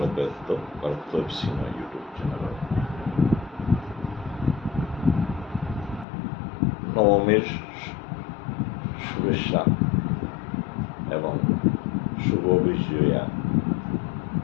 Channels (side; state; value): right; drops out; at 6.1 s